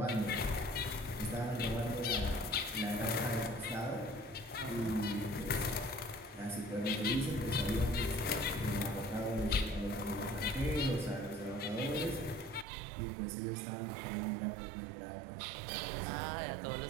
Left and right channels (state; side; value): drops out; left; at 12.7 s